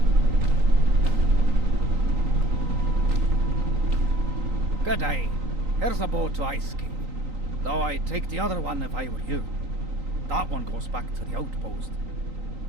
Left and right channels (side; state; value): left; late; 3.9 ms